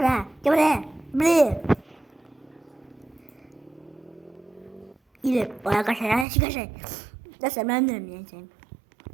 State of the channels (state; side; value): drops out; left; at 6.2 s